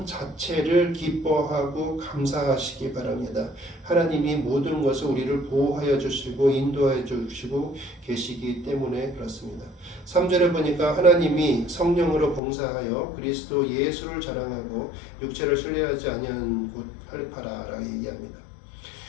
자체를 기뻐하고 감사하시기 바랍니다. 하나님이 모든 것을 우리를 보호하여 주시고 인도하여 주시고 계시기 때문에 그렇습니다. 3절에 보니까 하나님이 성령으로 봉사하여 그리스도 예수를 자랑하고 육체를 신뢰하지 아니한 곳 할례파라라고 얘기합니다.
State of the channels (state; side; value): drops out; right; at 12.4 s